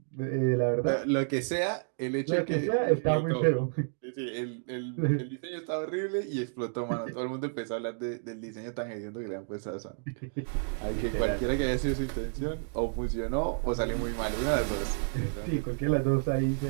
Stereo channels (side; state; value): left; silent; digital silence